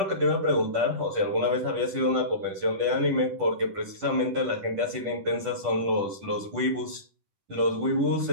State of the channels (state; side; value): late; left; 10 ms